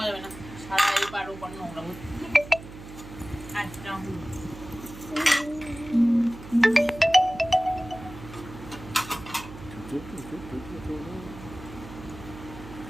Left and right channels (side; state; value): right; noise; hum, 15 dB below the sound